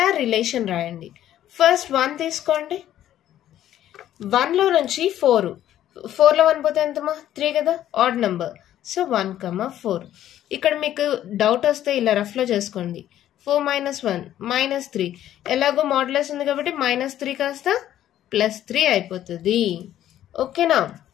రిలేషన్ రాయండి. ఫస్ట్ 1 తీసుకోండి. 1లో నుంచి 4, 4లో 1 పోతే ఎంతమా? 3 కదా, ఆడ్ నెంబర్. సో 1, 4. ఇక్కడ మీకు డౌట్ వస్తే ఇలా రఫ్లో చేసుకోండి. 4 - 1 -3. ఎలాగో మాడ్యులస్ ఉంది కాబట్టి -3 కాస్త +3 అయిపోతుంది. ఓకేనా?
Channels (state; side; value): quieter; right; 12.0 dB